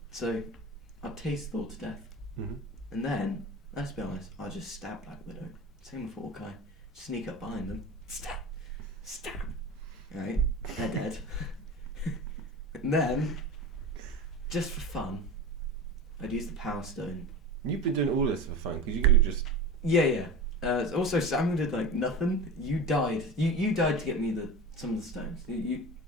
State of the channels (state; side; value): normal; both; correlation 0.30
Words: so I'll tase Thor to death, Mhm. and then, let's be honest, I'll just stab Black Widow. Same with Hawkeye. Sneak up behind them, stab, right? They're dead. And then, just for fun, I'd use the Power Stone. You've been doing all this for fun because you could have just. Yeah. Also, Samuel did nothing. You died. You died to get me some of the stones.